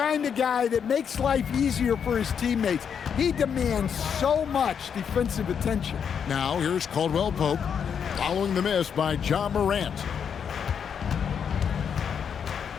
of guy that makes life easier for his teammates. He demands so much defensive attention. Now here's Caldwell Pope following the miss by Ja Morant.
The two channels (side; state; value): right; quieter; 7.4 dB